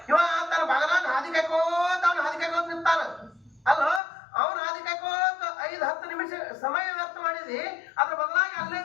ಇವ ತನ್ನ ಬಗಲಾಗ ಹಾದಿ ಕಾಯ್ಕೋತ ಅವ್ನು ಹಾದಿ ಕಾಯ್ಕೋತ ನಿಂತಾನ. ಅಲ್ಲ ಅವ್ನು ಹಾದಿ ಕಾಯ್ಕೋತ 5-10 ನಿಮಿಷ ಸಮಯ ವ್ಯರ್ಥ ಮಾಡಿದಿ. ಅದ್ರ ಬದಲಾಗಿ ಅಲ್ಲೇ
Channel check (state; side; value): drops out; right; at 4.0 s